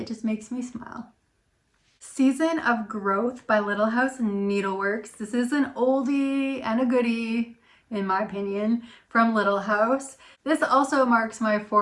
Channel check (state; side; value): identical; both; correlation 1.00